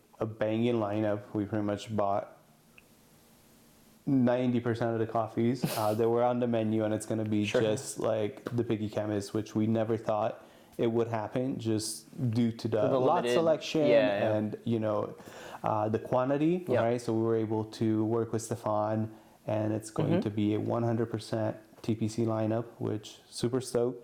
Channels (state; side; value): identical; both; correlation 1.00